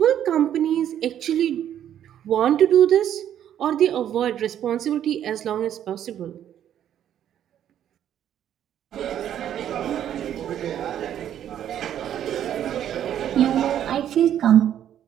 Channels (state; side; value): quieter; left; 10.4 dB